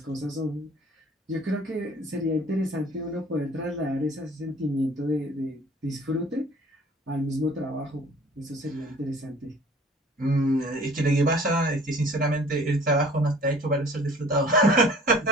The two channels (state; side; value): normal; both; correlation 0.51